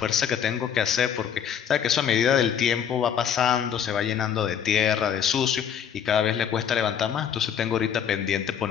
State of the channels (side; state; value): right; quieter; 8.4 dB